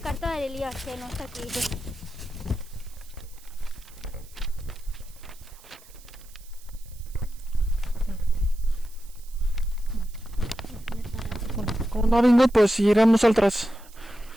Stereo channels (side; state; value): right; noise; hiss, 24 dB below the sound